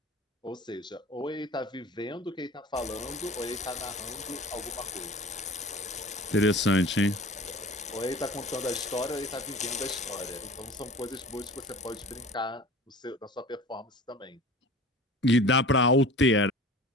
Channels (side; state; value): both; normal; correlation 0.40